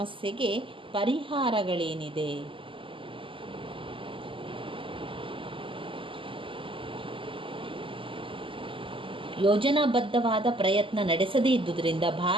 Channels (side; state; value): left; late; 0.25 ms